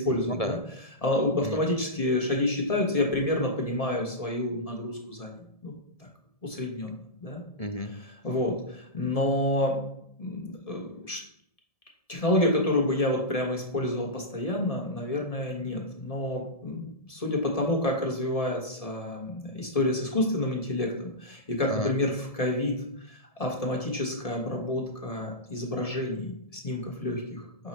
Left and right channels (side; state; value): right; late; 1.7 ms